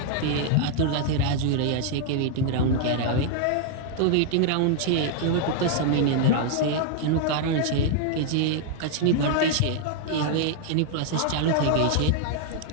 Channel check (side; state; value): both; different; correlation 0.00